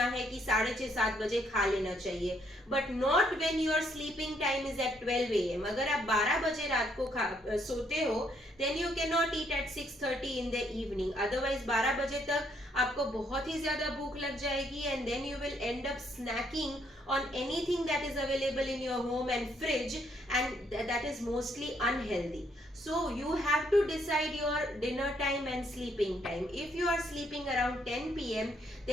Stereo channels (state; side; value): normal; both; correlation 0.71